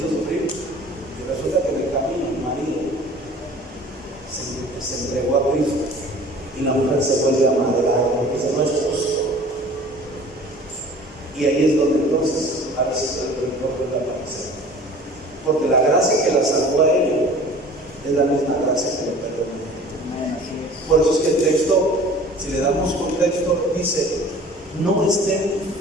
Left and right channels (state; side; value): normal; both; correlation 0.46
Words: sufrir, y resulta que en el camino el marido se entregó a Cristo y la mujer se vuelve a amargar porque ese no es justo. Y ahí es donde entonces a veces el rencor puede aparecer, porque la gracia que la salvó a ella es la misma gracia que le perdona. Por eso es que el texto, si le damos contexto, dice: no estén